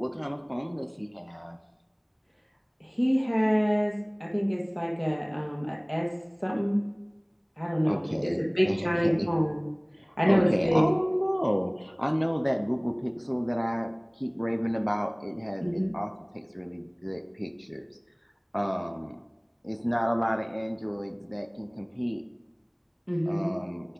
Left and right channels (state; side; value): identical; both; correlation 1.00